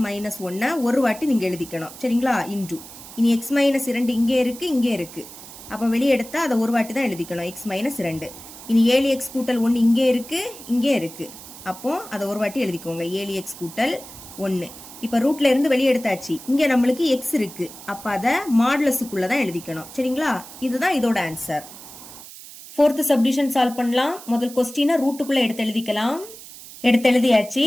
-1 ஒரு வாட்டி நீங்க எழுதிக்கணும், சரிங்களா? இன்டு, இனி x -2 இங்கே இருக்கு, இங்கே இருக்கு. அப்ப வெளியே எடுத்தா அதை ஒரு வாட்டி தான் எழுதிக்கணும், x -2. இனி 7x கூட்டல் 1 இங்கே இருக்கு, இங்கே இருக்கு. அப்போ அதை ஒரு வாட்டி எழுதிக்கோங்க, 7x கூட்டல் 1. இப்ப ரூட்ல இருந்து வெளியே எடுத்தாச்சு, இங்க நம்மளுக்கு x இருக்கு, அப்ப அதை மாடுலஸுக்குள்ள தான் எழுதிக்கணும், சரிங்களா? இதுதான் இதோட ஆன்சர். ஃபோர்த் சப்டிவிஷன் சால்வ் பண்ணலாம். முதல் கொஸ்டினை ரூட்டுக்குள்ள எடுத்து எழுதிக்கலாம். எடுத்து எழுதியாச்சு.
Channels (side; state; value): right; noise; hiss, 16 dB below the sound